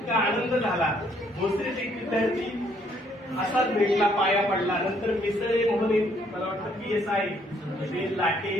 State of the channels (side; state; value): both; normal; correlation 0.67